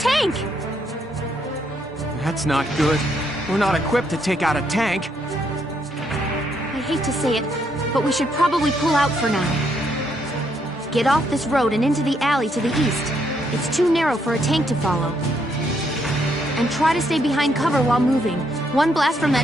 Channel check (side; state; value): both; normal; correlation 0.74